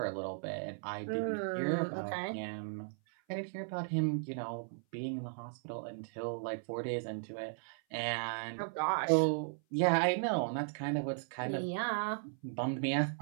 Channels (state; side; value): silent; left; 54 dB below the other